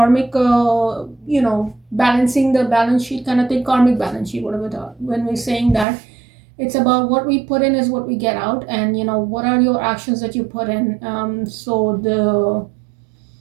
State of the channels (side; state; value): left; drops out; at 5.9 s